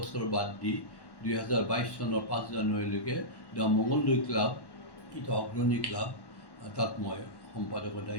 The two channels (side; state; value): right; late; 1.1 ms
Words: বাদ দি 2022 চনৰ 5 জানুৱাৰীলৈকে দ্য মংগলদৈ ক্লাব এটা অগ্ৰণী ক্লাব তাত মই সম্পাদকৰ